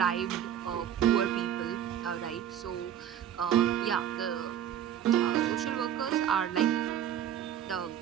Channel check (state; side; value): quieter; left; 10.1 dB